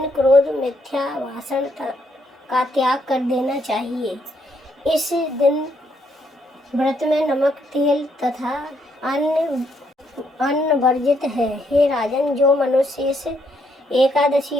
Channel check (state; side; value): normal; both; correlation 0.73